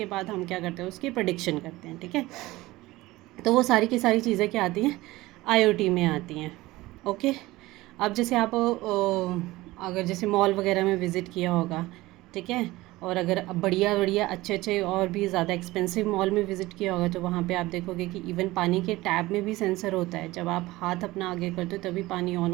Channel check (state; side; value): quieter; left; 18.9 dB